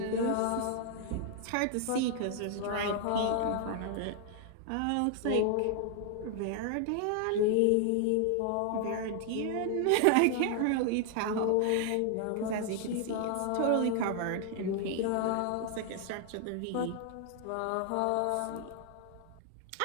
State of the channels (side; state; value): both; different; correlation 0.00